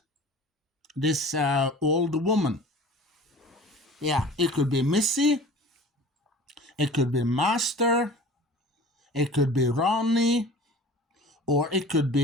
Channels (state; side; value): normal; both; correlation 0.42